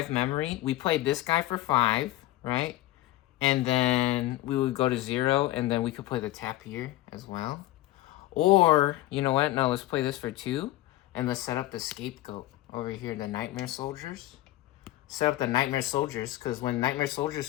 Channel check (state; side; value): quieter; right; 16.0 dB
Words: memory. We played this guy for 5, right? And then we would go to 0, and then we could play the tap here as well. Or, you know what? No, let's play this for 2, and let's set up the scapegoat over here, the Nightmare Soldiers. Set up the Nightmare Soldiers, because when Nightmare